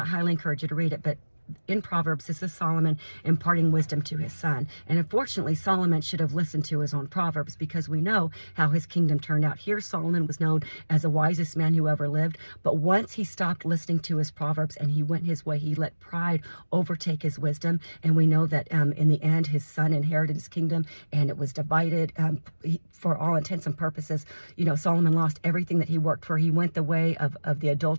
highly encourage you to read it. But in Proverbs, this is Solomon imparting wisdom to his son. And unfortunately, Solomon should have listened to his own Proverbs, because we know how his kingdom turned out. Here, Solomon was known as the wisest man who ever lived. But once he stopped listening to his Proverbs and he went his way, he let pride overtake his wisdom. And we know that in the end, his son inherited his kingdom, and it was divided. For all intents and purposes, Solomon lost everything that he worked for. He went the way of the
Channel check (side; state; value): both; inverted; correlation -1.00